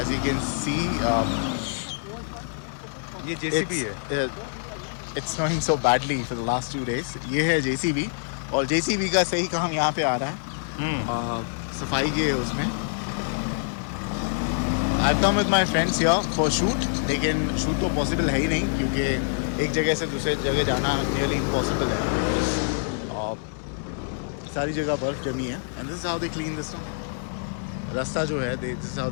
you can see, ये JCB है। it's snowing so badly for the last 2 days. ये है JCB और JCB का सही काम यहाँ पे आ रहा है सफाई के उसमें. I've come with my friends here for shoot, लेकिन shoot तो possible है ही नहीं क्योंकि एक जगह से दूसरे जगह जाना nearly impossible है. सारी जगह बर्फ़ जमी है and this is how they clean this no. रास्ता जो है this is how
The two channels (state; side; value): silent; right; digital silence